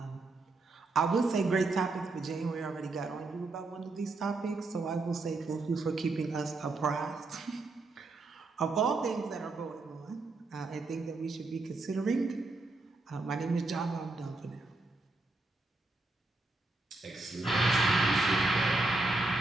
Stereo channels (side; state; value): left; quieter; 3.2 dB